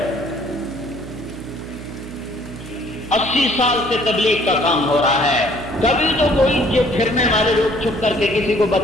80 سال سے تبلیغ کا کام ہو رہا ہے، کبھی تو کوئی یہ پھرنے والے لوگ چھپ کر کے کسی کو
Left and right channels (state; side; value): noise; right; hum, 13 dB below the sound